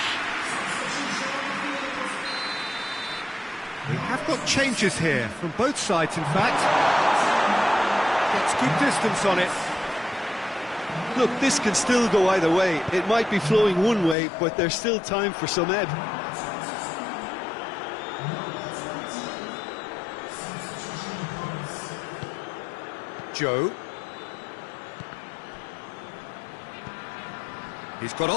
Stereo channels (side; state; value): right; drops out; at 14.2 s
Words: We have got changes here, from both sides in fact. Gets good distance on it. Look, this can still go either way. It might be flowing one way, but there's still time for some ebb. Joe. He's got